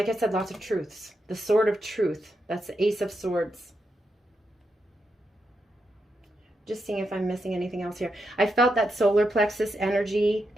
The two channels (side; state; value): both; normal; correlation 0.84